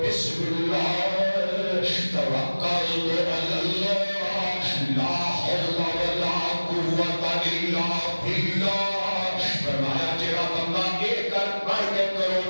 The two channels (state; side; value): inverted; both; correlation -1.00